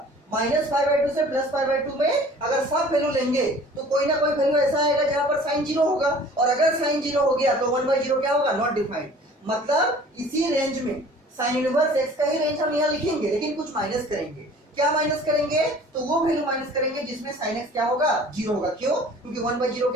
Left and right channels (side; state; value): both; normal; correlation 0.48